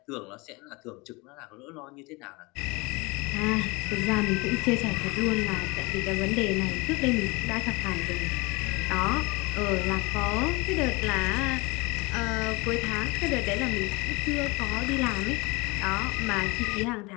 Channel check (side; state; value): right; quieter; 25.5 dB